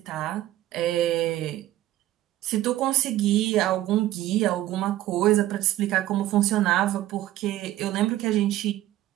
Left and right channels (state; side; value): quieter; left; 14.4 dB